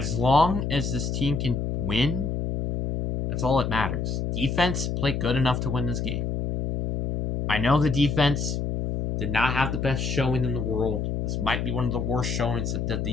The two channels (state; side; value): noise; left; hum, 1 dB below the sound